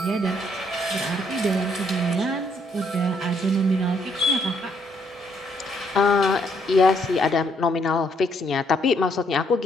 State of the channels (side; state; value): both; normal; correlation 0.70